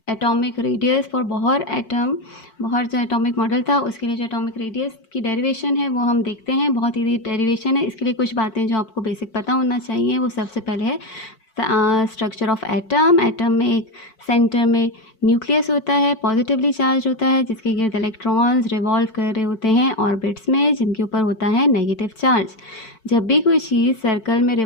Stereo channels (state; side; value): late; right; 4.5 ms